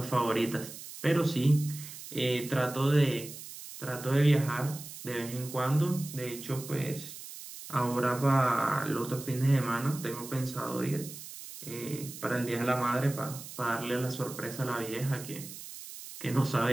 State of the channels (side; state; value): right; noise; hiss, 13 dB below the sound